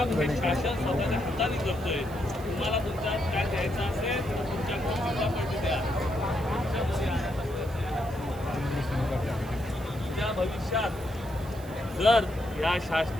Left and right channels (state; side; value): noise; right; hiss, 21 dB below the sound